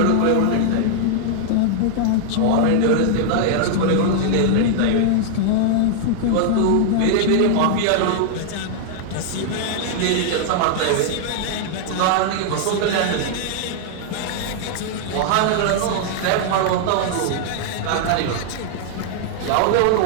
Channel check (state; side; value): different; both; correlation -0.01